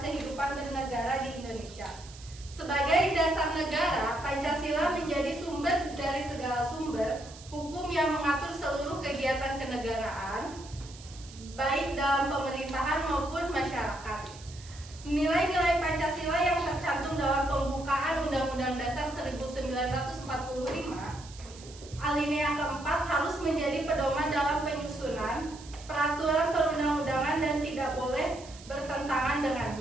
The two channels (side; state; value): right; noise; hiss, 18 dB below the sound